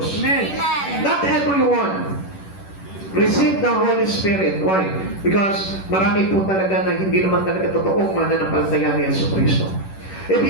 Amen. Not everyone receive the Holy Spirit. Why? Because marami po talaga na hindi naman talaga totoong mananampalataya ni Jesucristo. If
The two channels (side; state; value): right; late; 10 ms